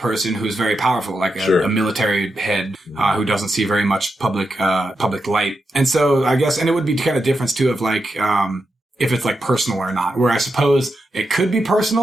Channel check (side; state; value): both; normal; correlation 0.86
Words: who's very powerful, like a military head who doesn't see very much public light. And so I guess, and it would be kind of difference too of like, if it's like personal or not, where I suppose it could be